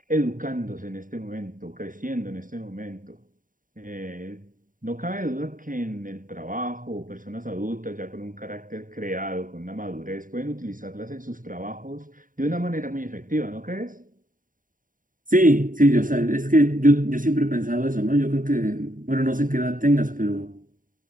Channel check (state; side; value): late; left; 0.39 ms